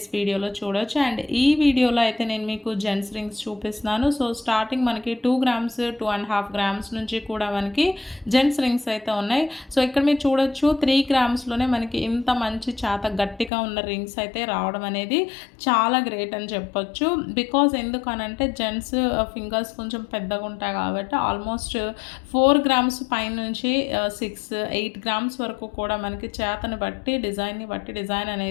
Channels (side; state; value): right; drops out; at 13.5 s